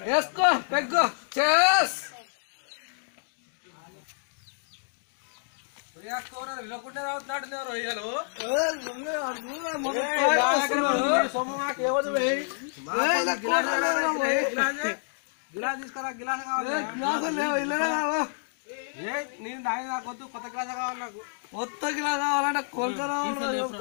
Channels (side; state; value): right; silent; digital silence